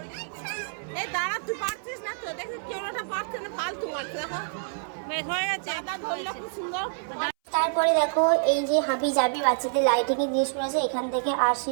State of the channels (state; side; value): silent; left; 60 dB below the other